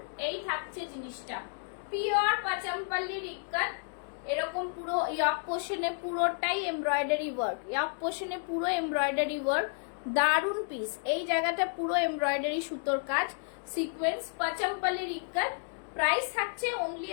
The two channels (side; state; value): right; silent; digital silence